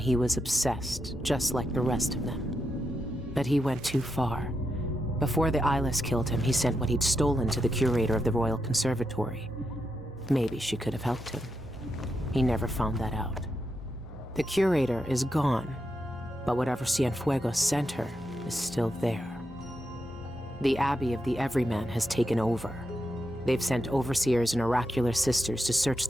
he was obsessed, just like the rest of them. But he went too far. Before the Eyeless killed him, he sent what he'd stolen to the curator of the Royal Conservatory. Maybe she could have helped him. He never found that out. The curator is gone, but whatever Cienfuegos sent her is still there. The Abbey of the Everyman has taken over. They've sent overseers and oracular sisters to search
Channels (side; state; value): both; normal; correlation 0.84